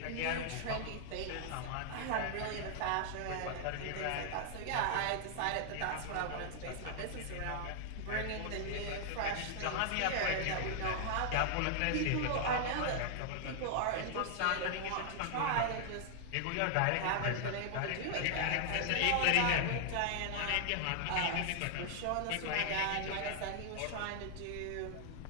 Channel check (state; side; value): different; both; correlation 0.00